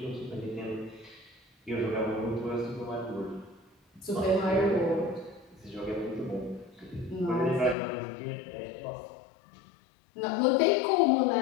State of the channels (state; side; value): drops out; right; at 7.8 s